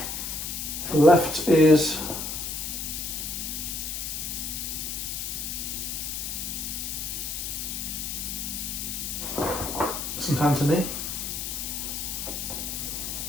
The left is St. Anthony.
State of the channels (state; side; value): noise; left; hiss, 4 dB below the sound